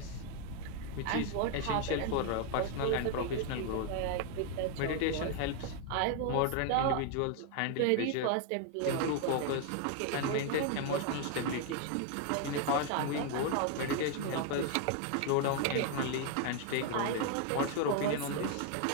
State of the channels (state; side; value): different; both; correlation 0.00